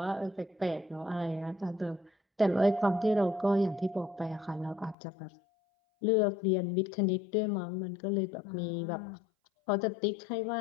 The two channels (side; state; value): right; drops out; at 5.0 s